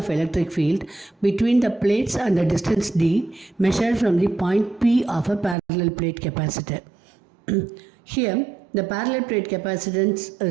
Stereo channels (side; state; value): left; drops out; at 5.6 s